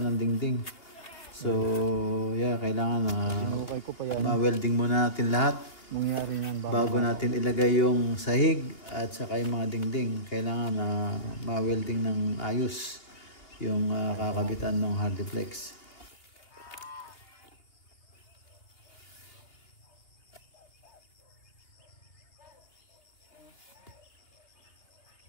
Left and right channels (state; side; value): late; right; 2.8 ms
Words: ng dingding. So, yeah, kailangan ma-welding muna natin lahat. Bago natin ilagay yung sahig at saka yung mga dingding. Kailangan ma-welding ng ayos yung kakabitan ng Hardiplex.